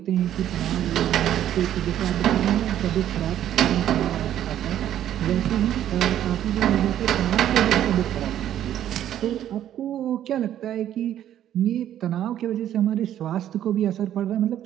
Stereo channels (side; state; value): left; quieter; 11.3 dB